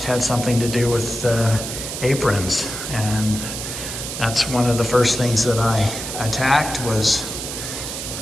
had something to do with aprons, and that's one of the first things that I attacked was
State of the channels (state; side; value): noise; right; hiss, 6 dB below the sound